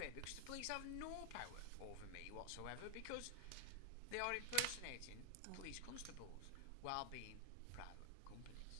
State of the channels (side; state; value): both; different; correlation -0.01